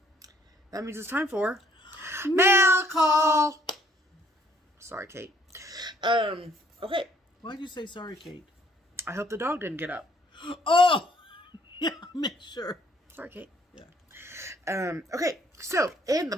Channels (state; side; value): normal; both; correlation 0.63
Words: That means it's time for mail call. Sorry, Kate. Okay. Why'd you say sorry, Kate? I hope the dog didn't get up. Oh! Yeah, make sure. Sorry, Kate. Yeah. Okay. So, in the